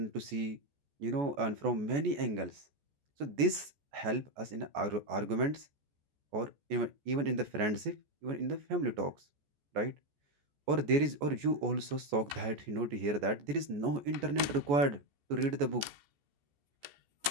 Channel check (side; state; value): left; late; 14 ms